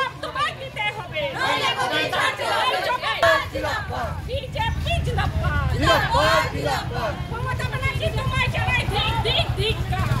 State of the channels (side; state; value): both; identical; correlation 1.00